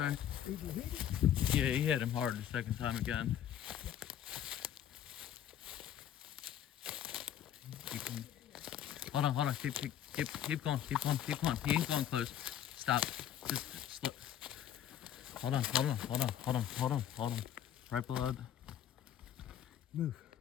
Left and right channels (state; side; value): quieter; right; 10.5 dB